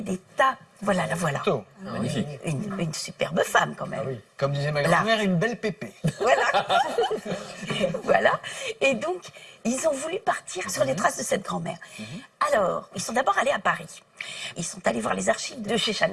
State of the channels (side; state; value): both; identical; correlation 1.00